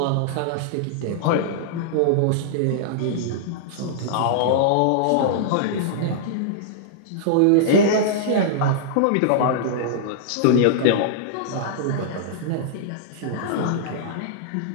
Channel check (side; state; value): both; different; correlation -0.02